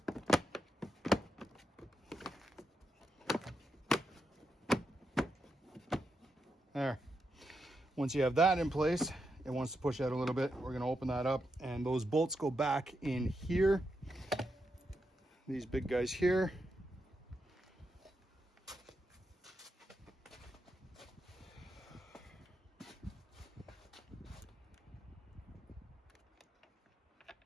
There. Once you have that in place, it wants to push out a little bit. We're going to open that up, and those bolts go back in here. These big guys here.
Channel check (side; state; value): both; normal; correlation 0.84